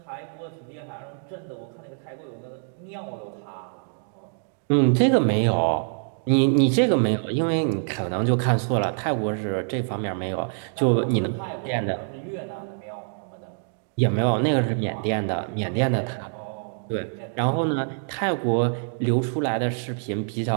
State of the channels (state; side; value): silent; left; 61 dB below the other